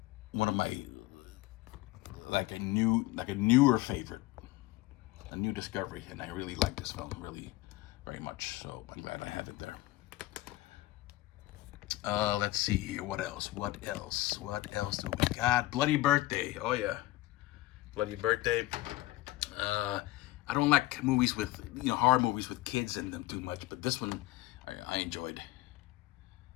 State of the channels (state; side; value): quieter; right; 18.0 dB